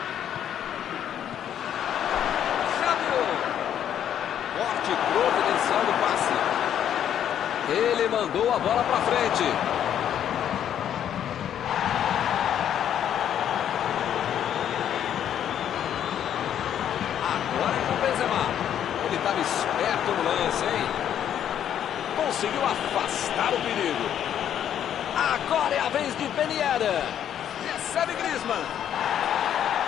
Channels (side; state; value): right; quieter; 9.9 dB